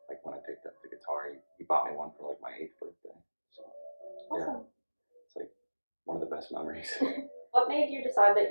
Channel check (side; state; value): both; inverted; correlation -1.00